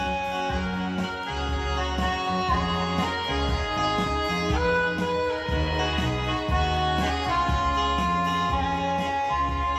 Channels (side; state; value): both; identical; correlation 1.00